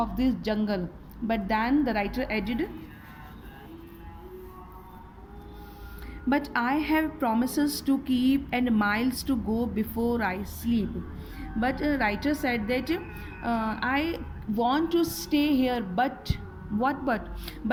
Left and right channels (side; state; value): both; identical; correlation 1.00